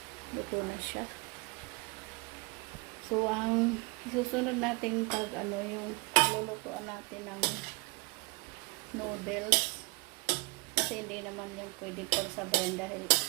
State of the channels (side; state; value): left; quieter; 25.9 dB